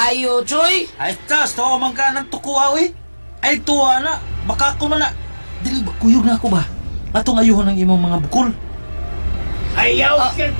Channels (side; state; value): both; inverted; correlation -1.00